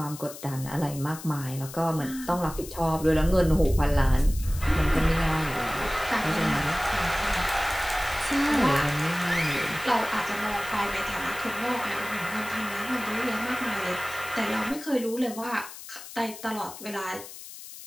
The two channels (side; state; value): left; noise; hiss, 14 dB below the sound